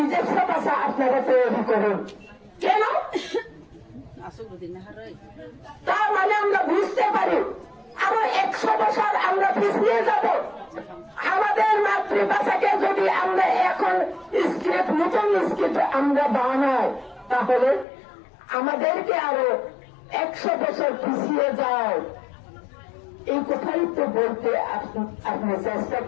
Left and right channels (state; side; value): drops out; right; at 17.9 s